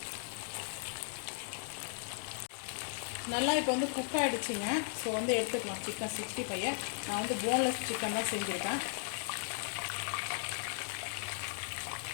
நல்லா இப்போ வந்து குக் ஆகிடுச்சிங்க. ஸோ வந்து எடுத்துக்கலாம் சிக்கன் 65. நான் வந்து போன்லெஸ் சிக்கன் தான் செஞ்சுருக்கேன்.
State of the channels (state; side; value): silent; right; 53 dB below the other